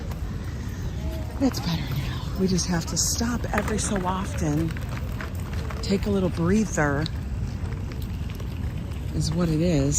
It's better now. We just have to stop every so often. Take a little breather is what it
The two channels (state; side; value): identical; both; correlation 1.00